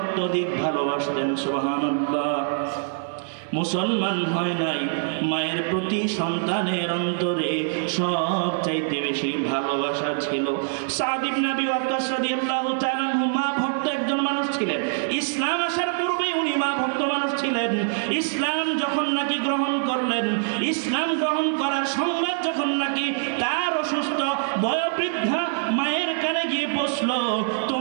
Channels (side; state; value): left; silent; 62 dB below the other